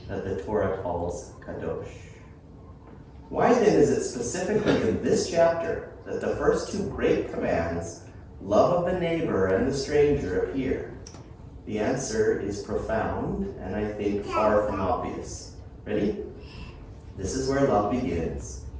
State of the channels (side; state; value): both; identical; correlation 1.00